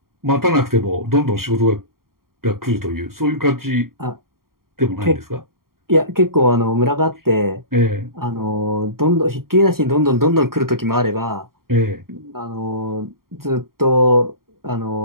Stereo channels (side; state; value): left; late; 0.93 ms